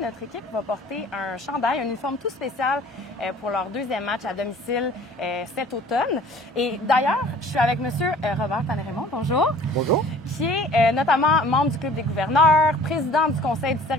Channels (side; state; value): both; normal; correlation 0.49